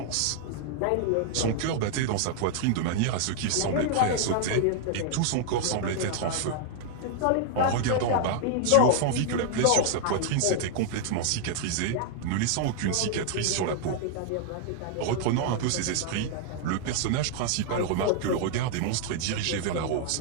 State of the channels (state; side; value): different; both; correlation 0.00